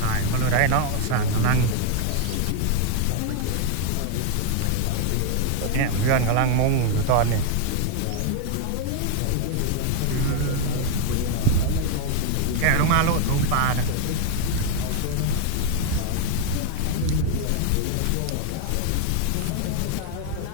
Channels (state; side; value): different; both; correlation 0.00